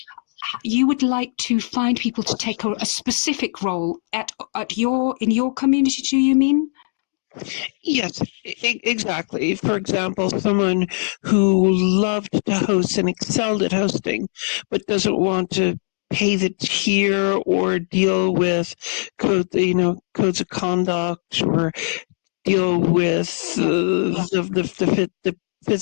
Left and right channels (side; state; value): right; silent; 64 dB below the other